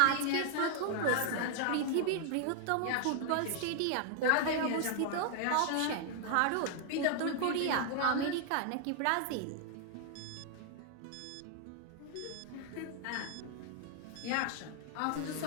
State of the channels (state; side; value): different; both; correlation 0.00